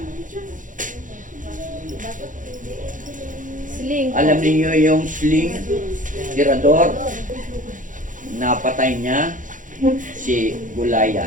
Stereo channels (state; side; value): late; left; 0.38 ms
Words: Sling. Alam niyo yung sling, tirador, napatay niya si